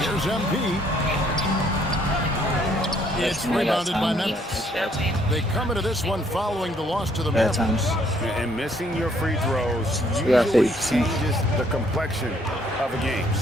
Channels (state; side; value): normal; both; correlation 0.66